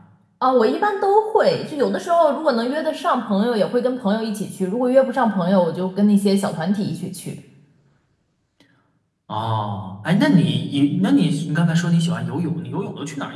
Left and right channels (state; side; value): identical; both; correlation 1.00